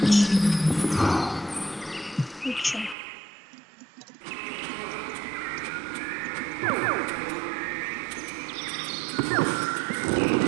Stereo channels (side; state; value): left; drops out; at 3.0 s